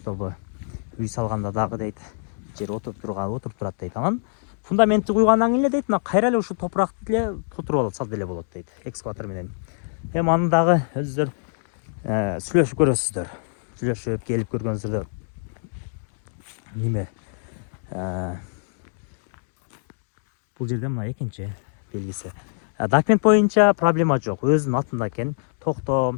үй салганда дагы дейт, жер отуруп турат дейт. Анан фундаментти куйгандан кийин эле дейт, мына кайра эле ушу топуракты эле тутуруп алат, салып эле болот дейт, экскаватор менен. Эми аны дагы өзүңөр сүйлөшүп көрөсүздөр. Сүйлөшүп келип көргөнүңүздөрдө неме бул жерде мына экинчи белгиси. Документ боюнча проблема жок, өзүнүн атында экен.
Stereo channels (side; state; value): right; silent; digital silence